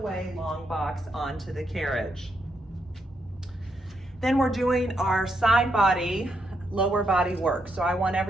long box, onto the carriage. Then we're doing our side body, lower body work. So I want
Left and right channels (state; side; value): normal; both; correlation 0.79